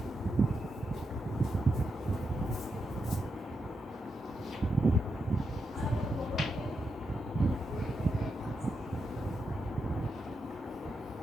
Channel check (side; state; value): both; normal; correlation 0.85